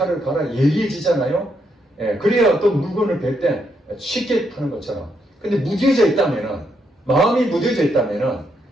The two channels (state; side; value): normal; both; correlation 0.78